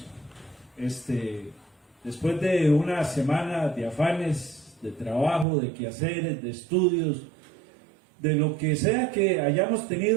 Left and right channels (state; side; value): drops out; left; at 5.5 s